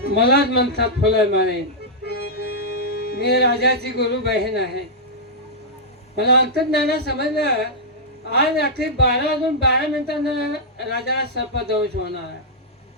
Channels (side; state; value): both; normal; correlation -0.09